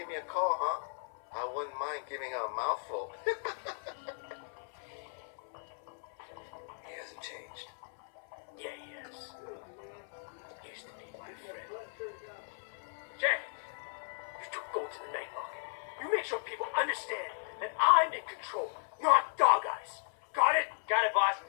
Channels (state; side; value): silent; right; 54 dB below the other